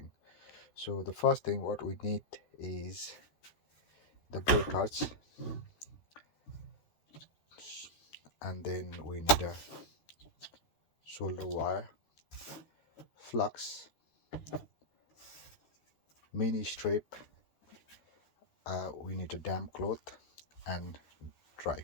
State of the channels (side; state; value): right; late; 13 ms